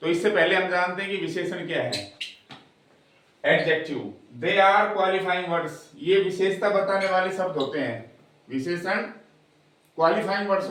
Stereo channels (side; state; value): both; identical; correlation 1.00